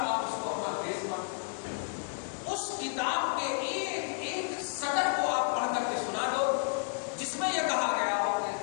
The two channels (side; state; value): right; silent; 57 dB below the other